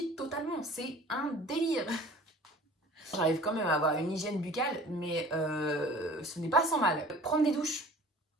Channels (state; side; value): normal; both; correlation 0.46